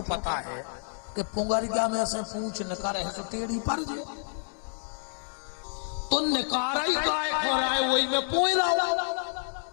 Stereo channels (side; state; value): right; silent; digital silence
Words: पता है कि पुंगरिया में से पूछ निकारे है सो टेढ़ी पर जाए, तो निकारा ही काय हो रहा है वही में पोई रहा।